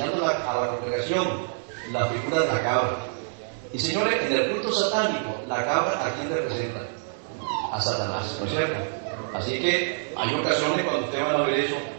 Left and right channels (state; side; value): silent; left; digital silence